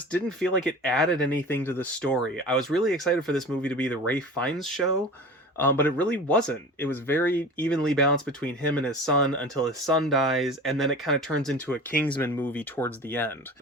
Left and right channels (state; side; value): normal; both; correlation 0.36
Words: didn't feel like it added anything to the story. I was really excited for this movie to be the Ralph Fiennes show, but it really wasn't. It was very evenly balanced between him and his son until his son dies, and then it kind of turns into a Kingsman movie towards the end.